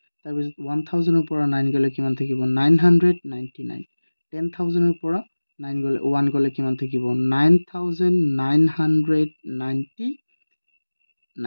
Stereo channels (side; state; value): both; inverted; correlation -1.00